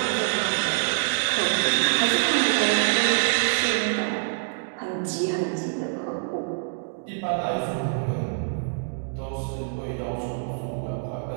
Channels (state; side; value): silent; left; digital silence